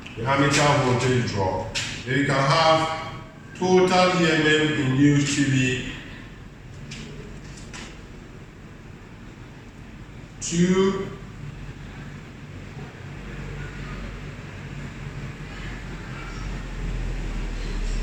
the armature voltage drop. Then you can have total EMF induced to be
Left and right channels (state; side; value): identical; both; correlation 1.00